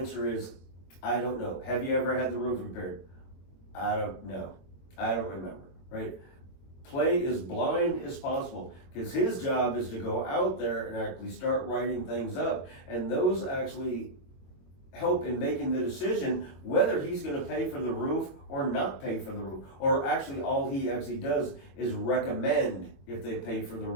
is, I don't know. Have you ever had the roof repaired? I don't know. I don't remember, right? Play as blind as possible, because his job is to go out there and actually start writing things up, and those actually help in making the decision whether he's going to pay for the roof or not pay for the roof, or actually all he actually does is recommend if they pay for the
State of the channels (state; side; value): late; right; 22 ms